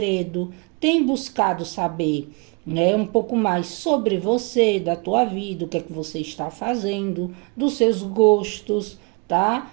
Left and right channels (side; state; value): left; quieter; 32.4 dB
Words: tem buscado saber, né, um pouco mais sobre você, da tua vida, o que é que você está fazendo, dos seus gostos, tá?